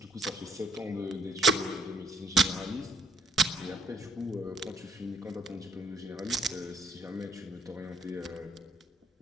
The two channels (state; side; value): normal; both; correlation 0.67